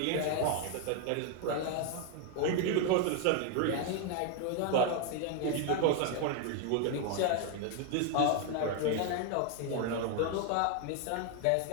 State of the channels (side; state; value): both; different; correlation 0.01